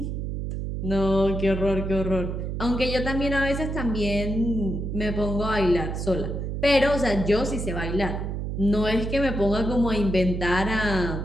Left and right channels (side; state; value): right; noise; hum, 3 dB below the sound